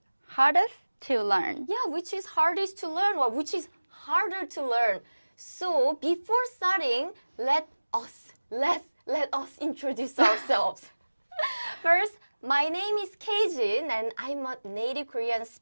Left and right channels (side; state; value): both; inverted; correlation -1.00